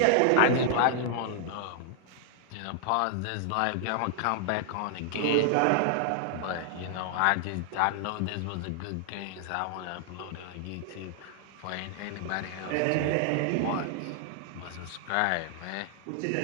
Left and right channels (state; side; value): different; both; correlation -0.01